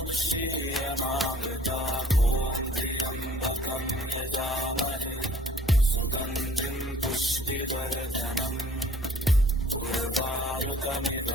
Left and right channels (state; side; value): normal; both; correlation 0.55